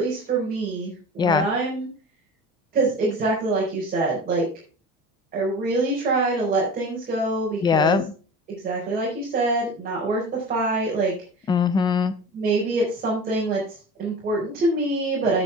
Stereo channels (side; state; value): both; normal; correlation 0.35